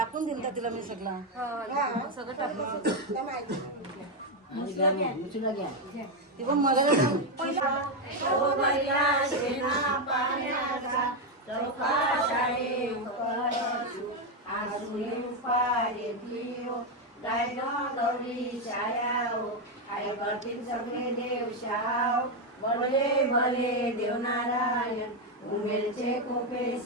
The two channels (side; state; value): both; normal; correlation 0.05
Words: दिल का तिला मी सगळं सगळं टाकून ती पण मला सगळे देवशाव भले भले देवनारायण उमेलचे कोपे